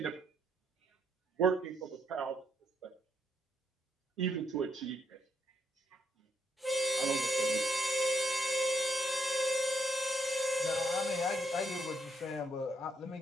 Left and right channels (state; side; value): normal; both; correlation 0.74